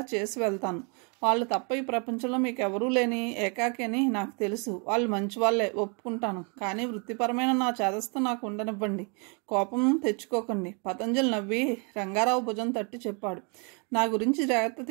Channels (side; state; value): left; quieter; 35.1 dB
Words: చేసి వెళ్తాను. వాళ్ళు తప్ప ఈ ప్రపంచంలో మీకు ఎవరూ లేని ఏకాకి అని నాకు తెలుసు. వాళ్ళు మంచి వాళ్ళే, ఒప్పుకుంటాను. కానీ వృత్తిపరమైన నా చేదస్తో నాకు ఉండనివ్వండి. కోపం తెచ్చుకోకండి. పతంజలి నవ్వి రంగారావు భుజం తట్టి చెప్పాడు. నా గురించి జాగ్రత్త